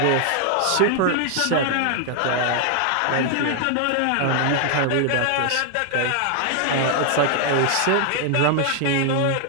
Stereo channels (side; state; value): both; different; correlation 0.00